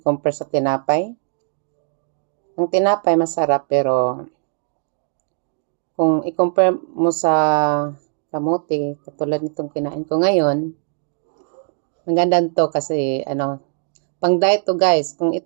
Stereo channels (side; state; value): left; silent; 58 dB below the other